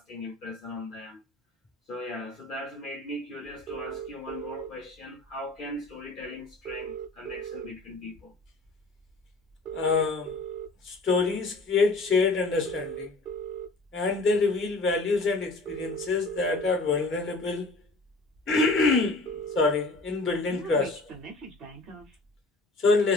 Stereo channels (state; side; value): quieter; right; 3.0 dB